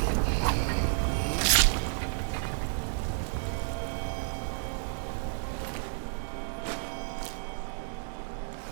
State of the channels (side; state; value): left; silent; digital silence